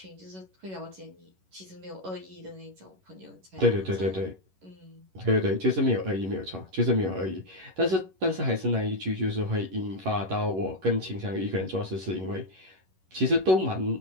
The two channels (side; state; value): left; late; 11 ms